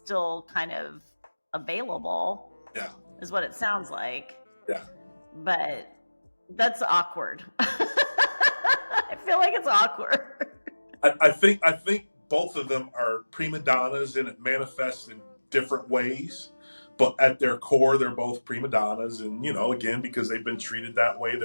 kind of available. Yeah. Is what it sounds like. Yeah. But that's awkward. I feel like it's awkward. I think both of them are prima donnas, and it manifests in different ways. but at their core, they're both prima donnas, and again, because they've been treated that way,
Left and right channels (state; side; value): inverted; both; correlation -1.00